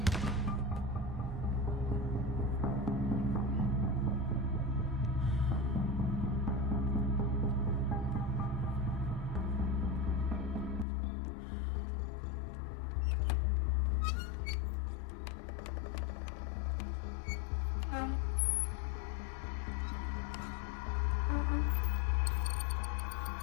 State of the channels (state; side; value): drops out; right; at 10.9 s